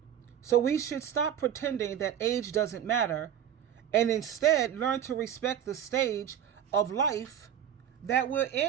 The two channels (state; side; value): quieter; left; 9.7 dB